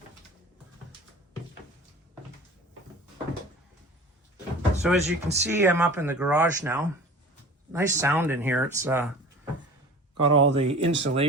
So as you can see, I'm up in the garage now. Nice sound in here. It's got all the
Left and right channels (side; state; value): both; normal; correlation 0.40